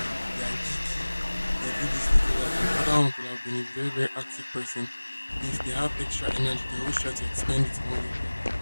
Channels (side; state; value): both; inverted; correlation -1.00